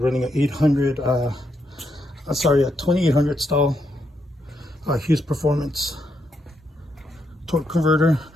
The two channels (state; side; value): normal; both; correlation 0.80